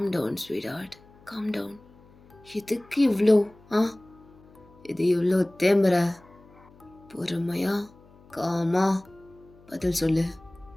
down sweetheart, calm down. எதுக்கு இவ்வளோ? ஆ, இது இவ்வளோ தேம்புற? பொறுமையா காமா பதில் சொல்லு.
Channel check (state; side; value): noise; left; hum, 26 dB below the sound